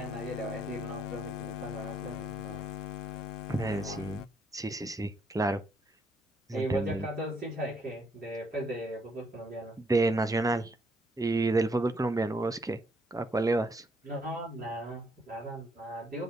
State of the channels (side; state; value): both; normal; correlation 0.71